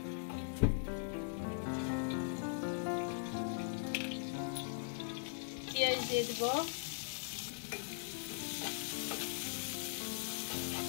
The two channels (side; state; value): right; silent; digital silence